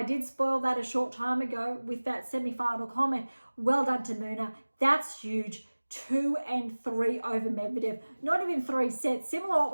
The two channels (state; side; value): inverted; both; correlation -1.00